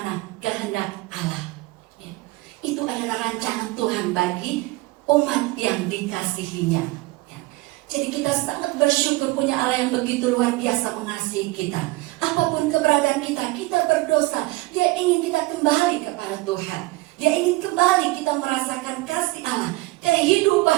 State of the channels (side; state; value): left; quieter; 20.4 dB